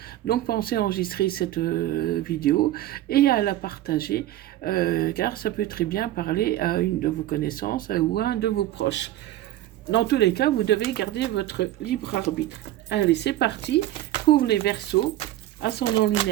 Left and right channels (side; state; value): left; quieter; 14.2 dB